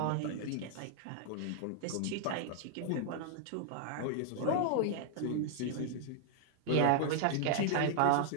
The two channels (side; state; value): both; different; correlation -0.01